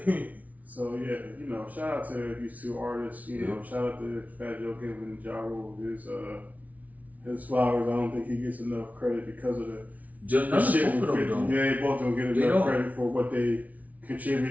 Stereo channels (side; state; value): left; late; 0.072 ms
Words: So yeah, you know, shout out to these 2 artists. You know, shout out to Fat Joe Kim and Ja Rule. His flowers. I don't think he gets enough credit because of the shit with 50. Yeah, they both don't get enough credit for what they